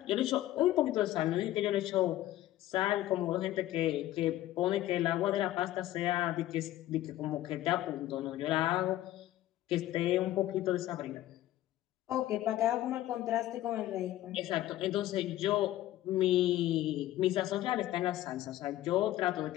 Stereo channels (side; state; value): right; quieter; 14.5 dB